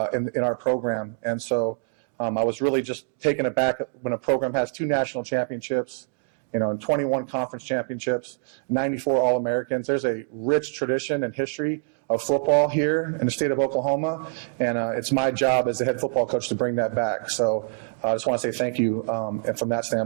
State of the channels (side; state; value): left; silent; 62 dB below the other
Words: in our program. And so I was really just taken aback when a program has 2 national championships, and 21 conference championships, 94 All-Americans. There's a rich tradition and history of football here in the state of Oklahoma, and it's my job as the head football coach to bring that back. So I just want to say thank you from that